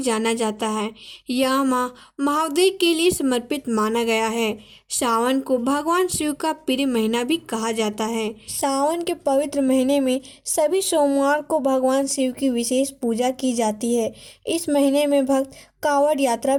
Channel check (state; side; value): identical; both; correlation 1.00